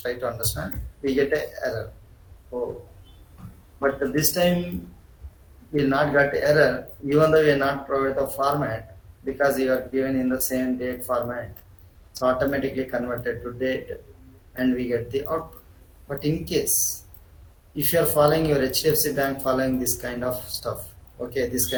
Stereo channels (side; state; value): both; identical; correlation 1.00